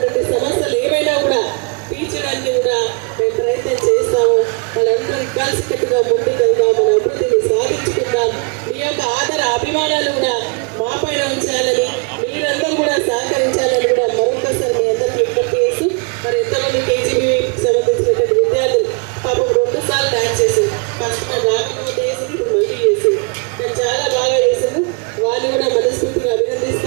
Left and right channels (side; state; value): left; quieter; 34.9 dB